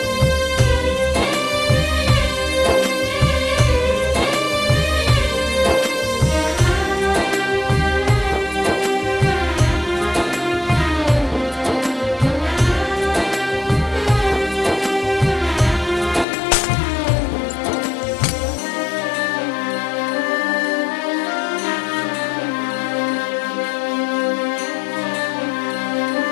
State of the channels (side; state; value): right; drops out; at 16.2 s